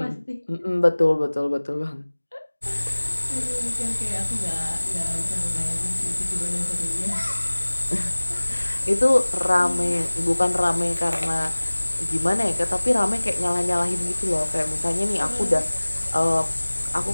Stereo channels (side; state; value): both; inverted; correlation -1.00